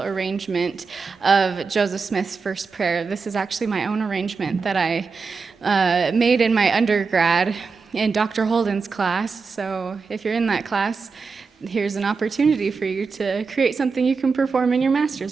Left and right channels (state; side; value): quieter; left; 4.8 dB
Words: arrangement of Joseph Smith's First Prayer. This is actually my own arrangement that I made in my undergrad in Dr. Holden's class. So if you're in that class, here's an opportunity for you to create something you can perform in your